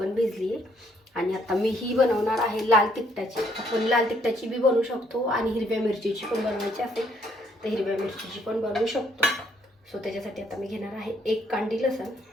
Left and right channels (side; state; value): both; normal; correlation 0.68